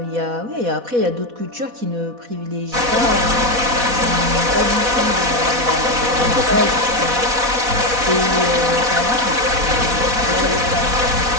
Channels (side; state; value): left; late; 4.1 ms